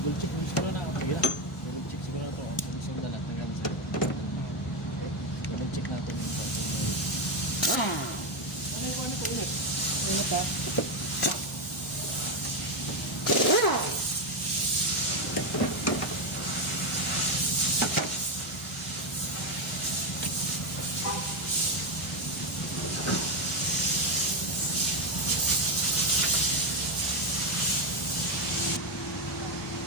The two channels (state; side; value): normal; both; correlation 0.08